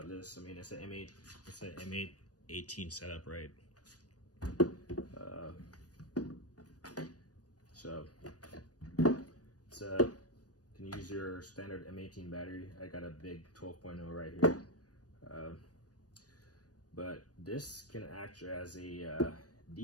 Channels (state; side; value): late; right; 0.68 ms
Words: this, I mean, it's an M8, it's an M8 18 setup, right? So it's can use your standard M18 battery. I got a big 12.0 right here. But this can act as a